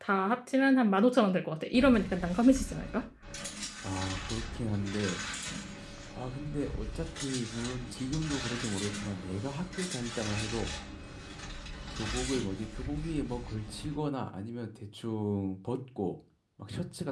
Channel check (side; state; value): both; identical; correlation 1.00